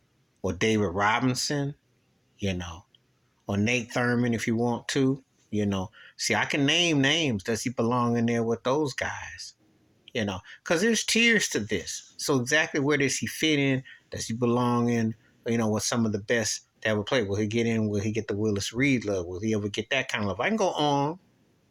or David Robinson? Or Nate Thurman if you want to. See, I can name names. Does he belong in there with those guys? Because there's tiers to this. So exactly where does he fit in? Does he belong in, with some of the best that ever played? Will he get in? Will he get the Willis Reed love? Will he ever get that kind of love? I can go on,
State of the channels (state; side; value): identical; both; correlation 1.00